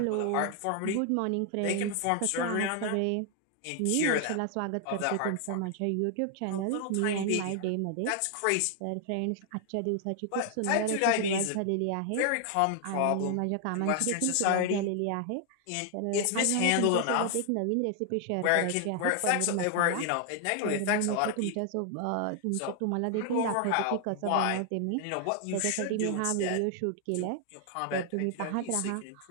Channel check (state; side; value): different; both; correlation 0.00